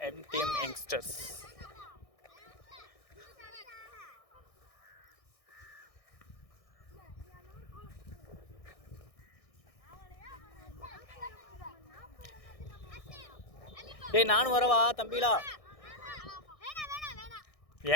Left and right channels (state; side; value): late; right; 1.6 ms